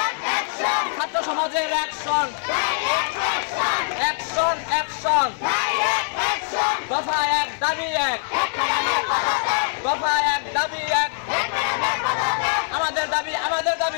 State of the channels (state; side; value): silent; right; 56 dB below the other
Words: ছাত্র সমাজের অ্যাকশন, অ্যাকশন অ্যাকশন, দফা এক দাবি এক, দফা এক দাবি এক, আমাদের দাবি আমাদের